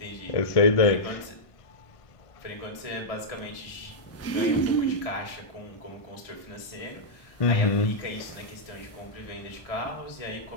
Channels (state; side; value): late; right; 1.6 ms